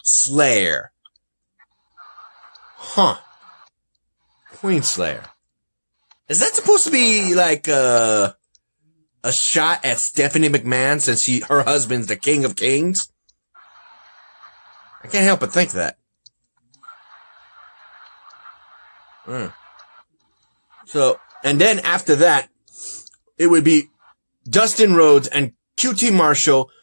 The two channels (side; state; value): both; inverted; correlation -1.00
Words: Slayer. Queen Slayer. Is that supposed to be like a shot at Stephanie McMahon since her husband's the King of Kings? I can't help but think that. So, and then after that, it would be Dustin Rhodes and QT Marshall